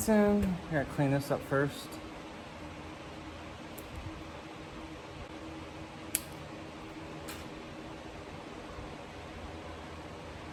in. I gotta clean this up first.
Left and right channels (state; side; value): identical; both; correlation 1.00